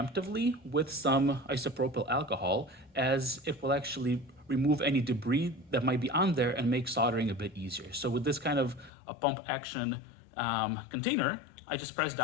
with some isopropyl alcohol, as it will actually remove any debris that might be on there and make soldering a bit easier. So with this kind of a pump action container, I just press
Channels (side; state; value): right; drops out; at 8.9 s